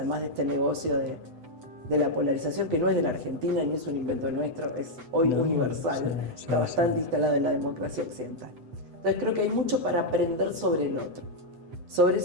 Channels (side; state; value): left; late; 8.0 ms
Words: de este negocio de la polarización, que no es de la Argentina ni es un invento nuestro, es hoy universal, está bastante instalado en la democracia occidental. Entonces creo que hay mucho para aprender sobre el otro, sobre